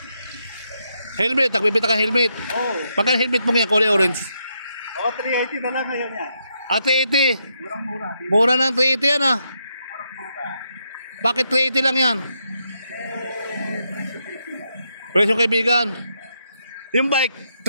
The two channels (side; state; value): both; inverted; correlation -0.80